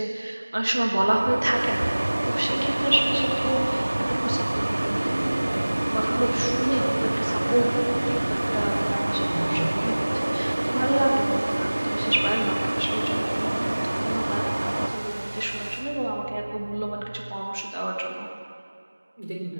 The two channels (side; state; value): both; inverted; correlation -1.00